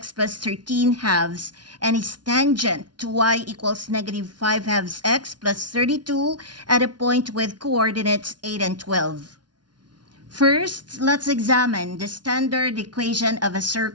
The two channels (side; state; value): left; late; 0.70 ms